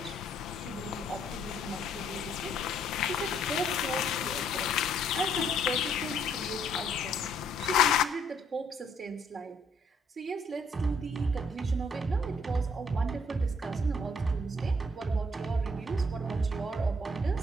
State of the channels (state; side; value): normal; both; correlation 0.67